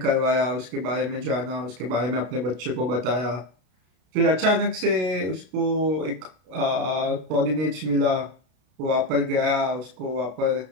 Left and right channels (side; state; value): left; late; 33 ms